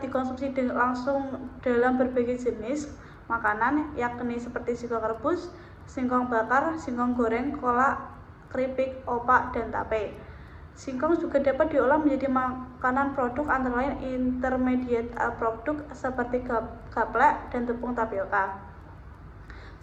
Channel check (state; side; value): identical; both; correlation 1.00